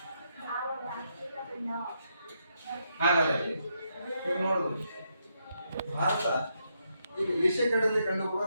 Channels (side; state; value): both; inverted; correlation -0.79